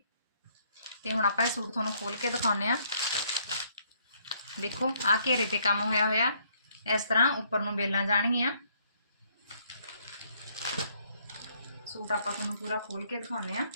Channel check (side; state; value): both; inverted; correlation -0.68